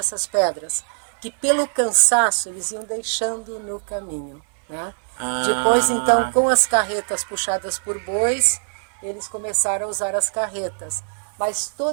pedras, que pelo cansaço eles iam deixando no caminho, né? Depois, então, com as carretas puxadas por bois, eles começaram a usar as carretas. Mas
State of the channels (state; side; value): silent; left; 64 dB below the other